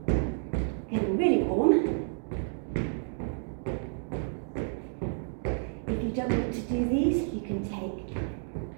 in, getting really warm. If you don't want to do these, you can take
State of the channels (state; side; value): silent; left; digital silence